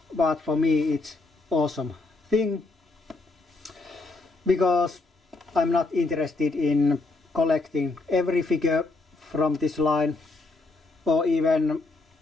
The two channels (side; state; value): right; quieter; 3.3 dB